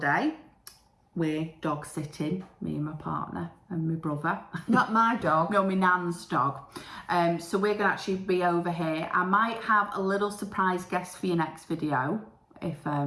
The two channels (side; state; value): both; identical; correlation 1.00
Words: We're dog sitting, me and my partner and my brother. Not my dog. No, my nan's dog. So we're going to actually be over here. I might have a little surprise guest for your next video if